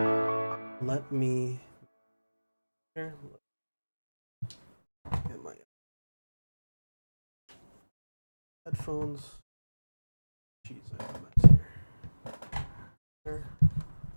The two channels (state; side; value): inverted; both; correlation -1.00